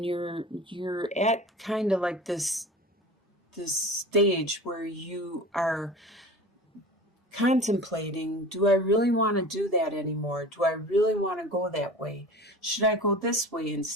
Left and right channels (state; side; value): normal; both; correlation 0.37